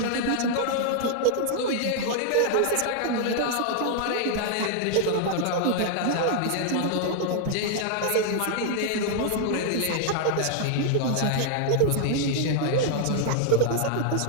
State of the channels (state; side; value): different; both; correlation 0.00